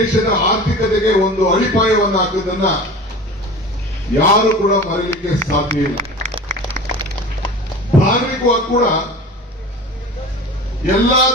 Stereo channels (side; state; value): both; normal; correlation 0.36